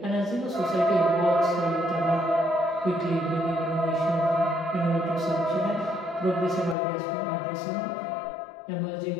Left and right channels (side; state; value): right; drops out; at 6.8 s